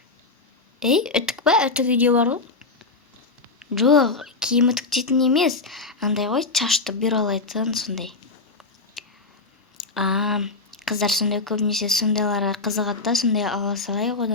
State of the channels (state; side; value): quieter; right; 3.8 dB